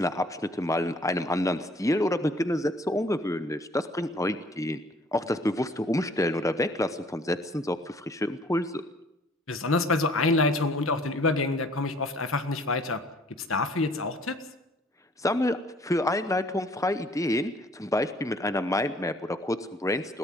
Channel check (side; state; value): both; normal; correlation 0.57